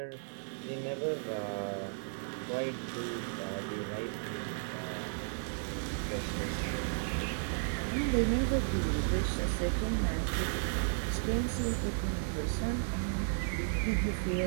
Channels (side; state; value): left; silent; digital silence